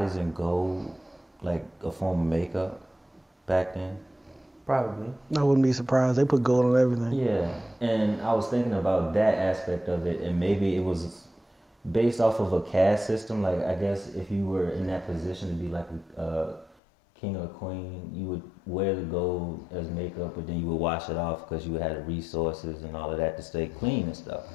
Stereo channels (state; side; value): drops out; right; at 16.8 s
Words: in gold, like a form of makeup back then? Probably. I wouldn't be surprised. They put gold on everything. Yeah, and I was thinking about that aspect of it, and maybe it was based off of a caste system. Like, I guess if you were in that position to be like a king or queen, you would wear the gold as makeup, but then you would wash it off because you had the resources and all of that to stay clean and stuff.